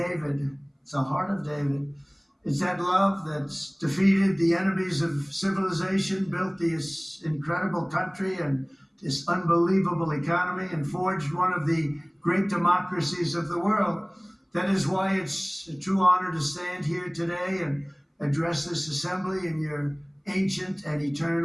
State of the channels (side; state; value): both; identical; correlation 1.00